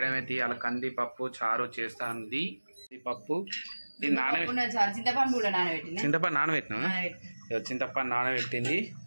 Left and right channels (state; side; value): inverted; both; correlation -1.00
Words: అయితే ఇవాళ కంది పప్పు చారు చేస్తుంది. పప్పు చింతపండు నానబెట్టినా, చింతపండు నానబెట్టింది.